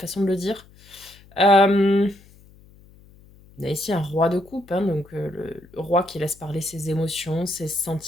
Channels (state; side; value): noise; left; hum, 25 dB below the sound